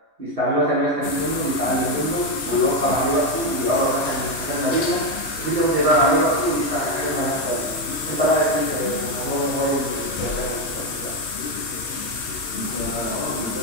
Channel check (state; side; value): late; right; 3.2 ms